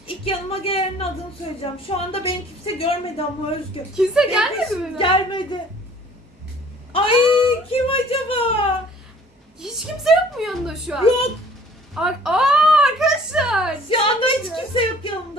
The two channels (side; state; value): both; normal; correlation 0.53